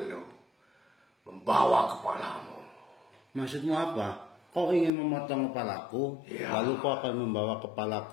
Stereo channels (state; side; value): drops out; right; at 4.9 s